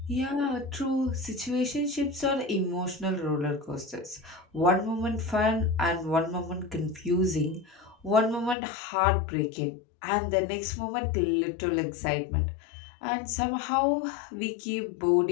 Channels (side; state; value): right; drops out; at 8.6 s